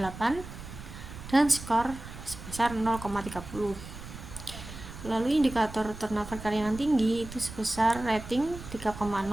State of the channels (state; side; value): noise; right; rumble, 13 dB below the sound